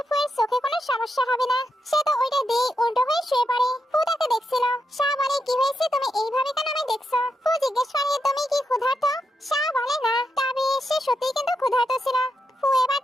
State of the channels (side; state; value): both; normal; correlation 0.84